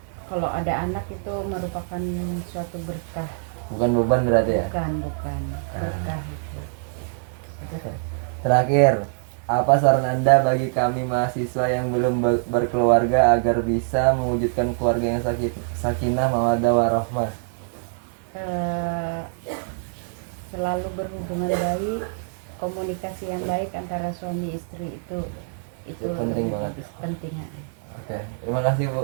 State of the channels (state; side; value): silent; left; 57 dB below the other